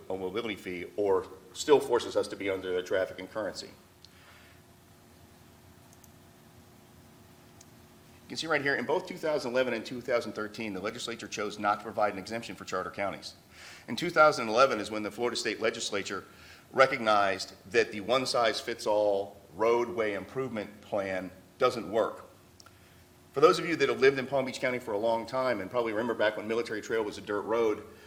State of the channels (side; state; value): both; identical; correlation 1.00